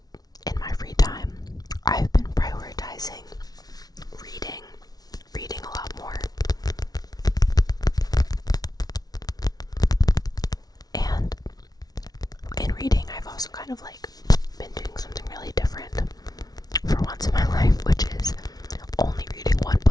in my free time, I've been prioritizing reading a lot more. And in reading, I've also kind of like been doing something really different for once in my life, which is only reading one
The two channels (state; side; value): late; right; 0.19 ms